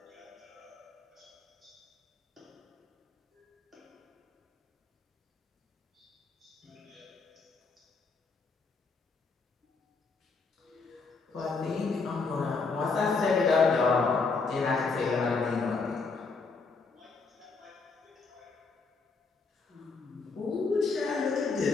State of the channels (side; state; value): right; quieter; 4.4 dB